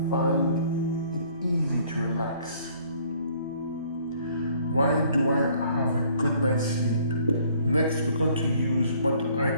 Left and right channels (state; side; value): inverted; both; correlation -0.59